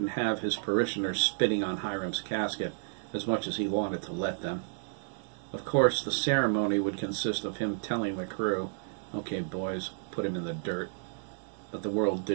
have his parishioners spitting on Hiram's casket as much as he wanted to let them. Of course, the ceremony would consist of him telling the crew, "Okay, boys, put him in the dirt." But the world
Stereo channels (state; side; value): silent; left; 57 dB below the other